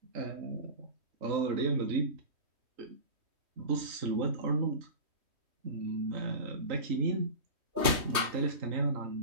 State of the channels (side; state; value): left; late; 3.1 ms